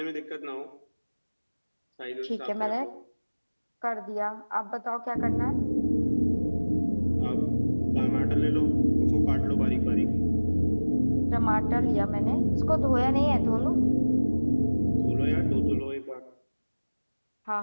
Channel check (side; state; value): both; inverted; correlation -1.00